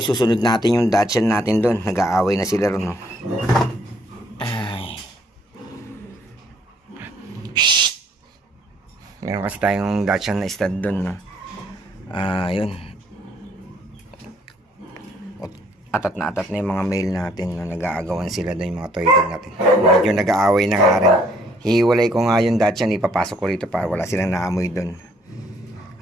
susunod natin yung Dachshund natin doon. Nag-aaway na sila ron, no? Ay. Shhh! Meron kasi tayong Dachshund na stud doon, no? Yun. Atat na yung mga male natin, no? Nag-aagawan sila doon, yung mga toy dog natin. Medyo nag-aaway na nga rin. Hiwalay ko nga yung Dachshund, ipapasok ko rito para wala silang naamoy doon.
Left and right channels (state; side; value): normal; both; correlation 0.65